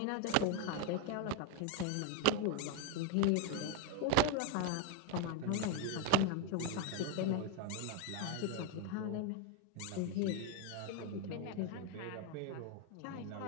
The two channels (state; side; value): different; both; correlation 0.02